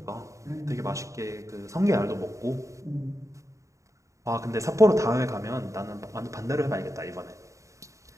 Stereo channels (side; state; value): left; late; 0.15 ms